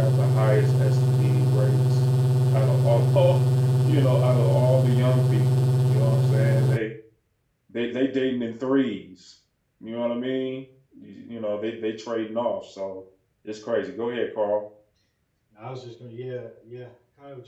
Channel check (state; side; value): identical; both; correlation 1.00